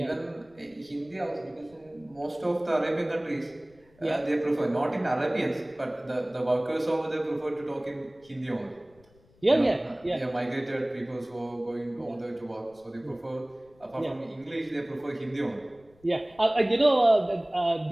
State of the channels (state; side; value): noise; left; rumble, 30 dB below the sound